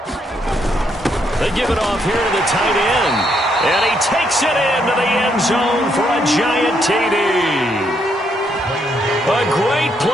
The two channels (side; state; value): both; normal; correlation 0.75